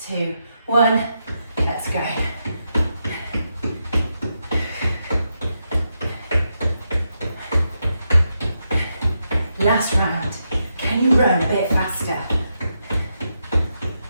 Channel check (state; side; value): inverted; both; correlation -0.84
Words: 2, 1. Let's go. Last round. Can you run a bit faster?